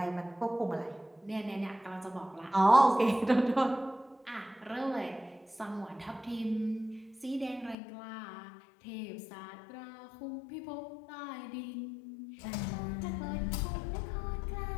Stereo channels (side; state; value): right; drops out; at 7.8 s